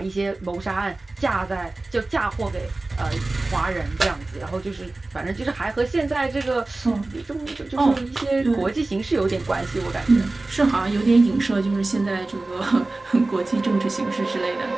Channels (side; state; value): left; quieter; 3.1 dB